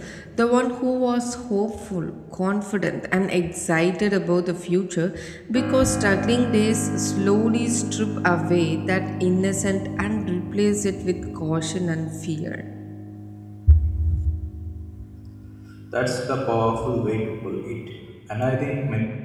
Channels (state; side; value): identical; both; correlation 1.00